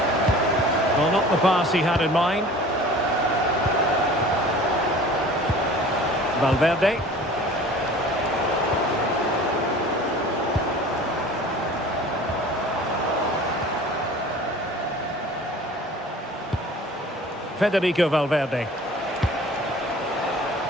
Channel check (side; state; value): both; normal; correlation 0.44